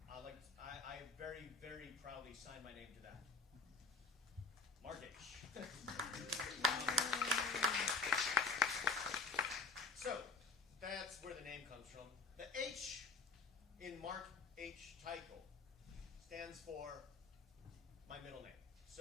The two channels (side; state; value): right; quieter; 3.9 dB